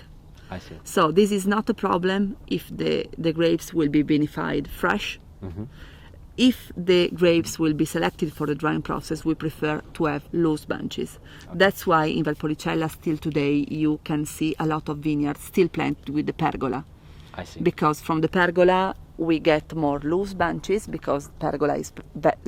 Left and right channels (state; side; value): identical; both; correlation 1.00